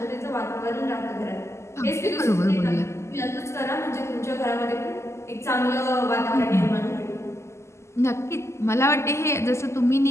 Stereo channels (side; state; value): right; late; 0.13 ms